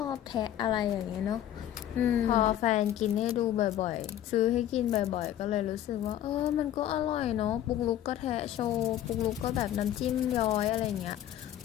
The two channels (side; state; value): right; quieter; 11.8 dB